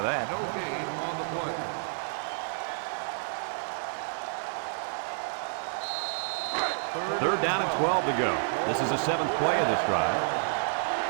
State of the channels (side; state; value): left; silent; digital silence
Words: that. No gain on the play. 3rd down and 12 to go. This is the 7th play of this drive.